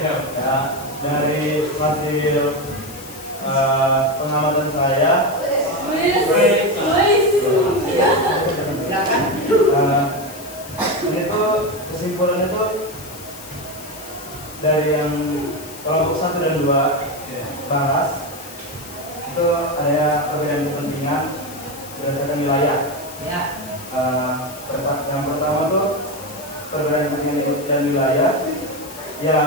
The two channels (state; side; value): noise; left; hiss, 16 dB below the sound